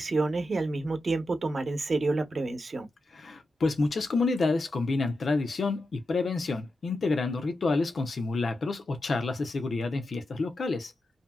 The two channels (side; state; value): both; normal; correlation 0.89